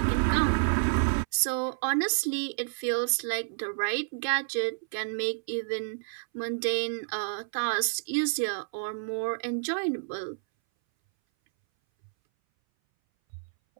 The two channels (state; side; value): silent; left; 58 dB below the other